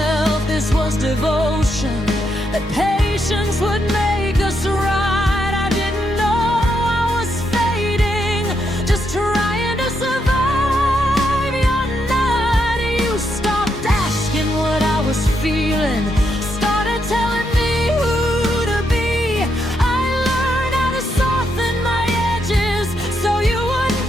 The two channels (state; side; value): normal; both; correlation 0.80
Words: this was devotion, that patience would make us right. I didn't know I was fading, just trying to survive. Your night, you stopped asking what I was feeling, started telling me who to be. I learned how to soften my edges so you wouldn't